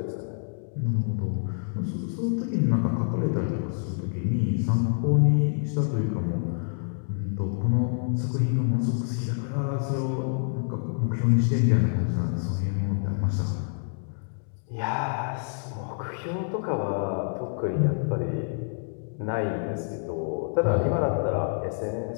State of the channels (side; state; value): right; silent; digital silence